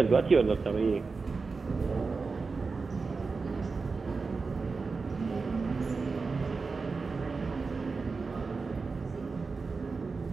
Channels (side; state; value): left; quieter; 4.4 dB